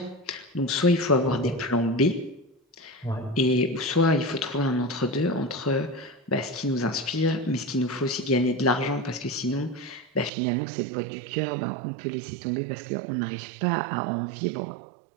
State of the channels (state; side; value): drops out; left; at 10.3 s